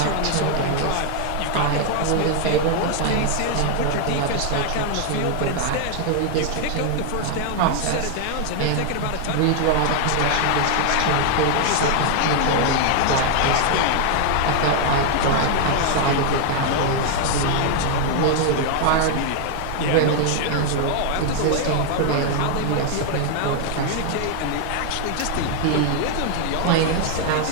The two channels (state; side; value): different; both; correlation 0.00